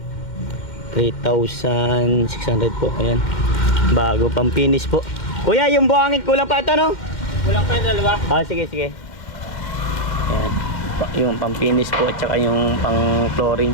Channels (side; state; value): right; late; 2.1 ms